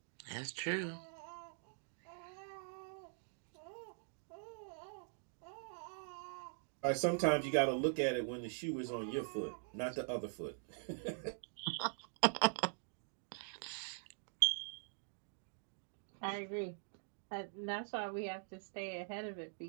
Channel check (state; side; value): silent; left; digital silence